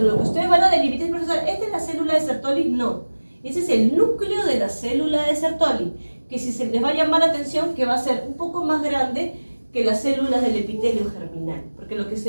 lo que ustedes van a delimitar es, profesor, ¿esta es la célula de Sertoli? No, ese es el núcleo de la célula de Sertoli, que si se les va a llamar la atención, que va a ser un poco más grande que las células del epitelio germinal, porque lo que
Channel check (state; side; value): inverted; both; correlation -1.00